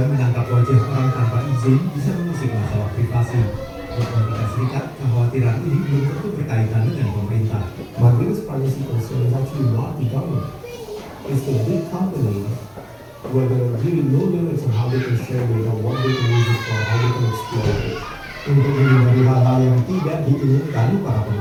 menangkap wajah orang tanpa izin bisa mengusik masalah privasi. Di Amerika Serikat, kekhawatiran ini belum tentu berkaitan dengan pemerintah. My biggest privacy concern is actually not the government. It's the big companies where there are really no limits on how they can share data, what they can use it for, how they can exploit it. Untuk menghindari hal-hal yang tidak diinginkan, para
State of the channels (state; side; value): identical; both; correlation 1.00